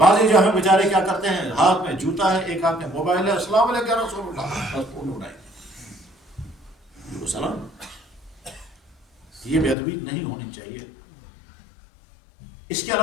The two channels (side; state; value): right; drops out; at 9.8 s